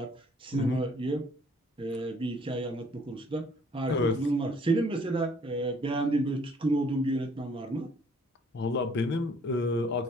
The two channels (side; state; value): both; normal; correlation 0.60